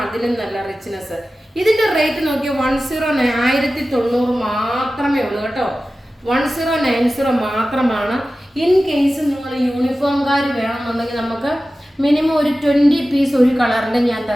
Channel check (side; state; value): both; normal; correlation 0.95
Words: അതിലും നല്ല റിച്ച്നെസ്. ഇതിന്റെ റേറ്റ് നോക്കിയാൽ 1090 മാത്രമേ ഉള്ളൂ കേട്ടോ. 1090 മാത്രമാണ്. ഇൻ കേസ് നിങ്ങൾ യൂണിഫോംകാർ വേണമെന്നുണ്ടെങ്കിൽ നമുക്ക് മിനിമം ഒരു 20 പീസ് ഒരു കളറിന്റെ